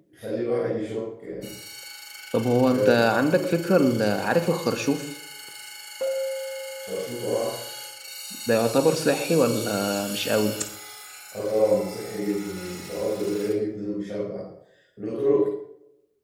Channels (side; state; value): both; identical; correlation 1.00